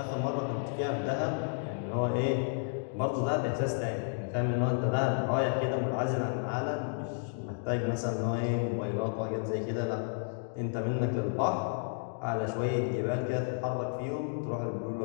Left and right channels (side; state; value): right; silent; digital silence